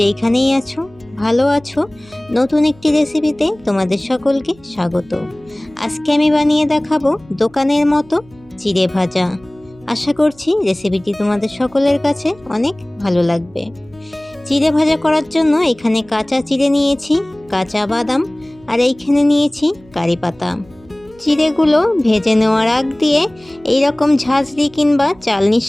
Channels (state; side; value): noise; right; hum, 26 dB below the sound